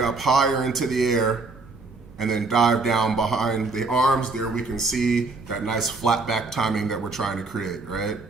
higher into the air, and then dive down behind the arms. There we can see that nice flat back timing that we're trying to create, right?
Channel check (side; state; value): left; quieter; 3.7 dB